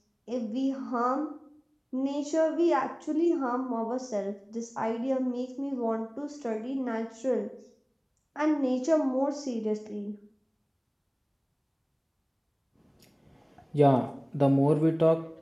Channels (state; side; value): identical; both; correlation 1.00